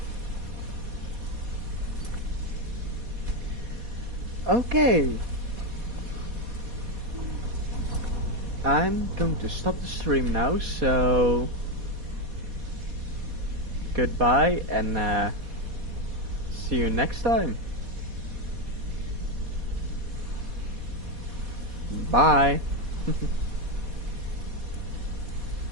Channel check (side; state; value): left; late; 4.2 ms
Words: Okay. I'm going to stop the stream now, so goodbye and see you next time. Bye.